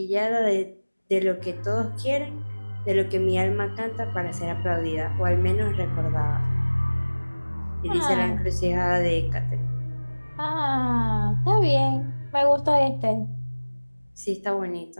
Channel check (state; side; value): inverted; both; correlation -1.00